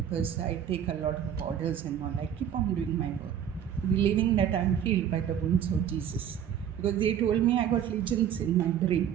I take a lot of orders and all. I keep on doing my work, believing that I'm healed by the wounds of Jesus. Because they told me I got lesions in my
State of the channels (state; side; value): quieter; left; 9.2 dB